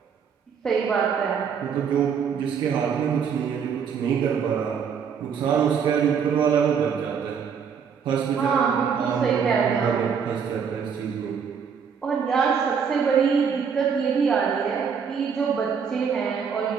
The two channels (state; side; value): quieter; left; 6.8 dB